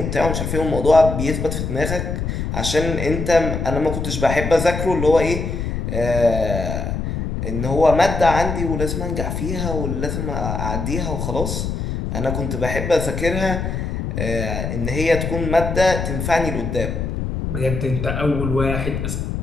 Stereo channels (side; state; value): left; noise; rumble, 3 dB below the sound